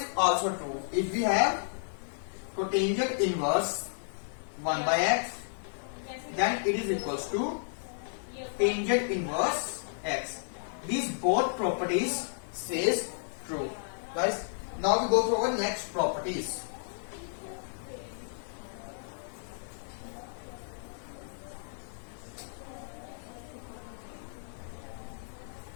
also true. If we have cotangent inverse 1 by x, then it is equals to tangent inverse x. These both properties says true. Guys, now we go to our next properties.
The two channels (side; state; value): right; silent; 56 dB below the other